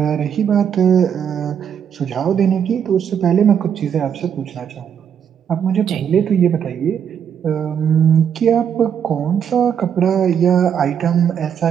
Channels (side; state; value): left; quieter; 8.2 dB